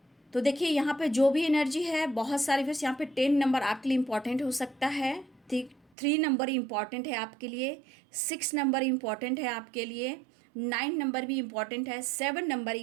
तो देखिए, यहाँ पे जो भी एनर्जी है, बहुत सारे फिर यहाँ पे 10 नंबर आपके लिए इम्पॉर्टेंट हो सकता है, ठीक। 3 नंबर इम्पॉर्टेंट है आपके लिए, 6 नंबर इम्पॉर्टेंट है आपके लिए, 9 नंबर भी इम्पॉर्टेंट है, 7 नंबर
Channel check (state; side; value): drops out; left; at 5.9 s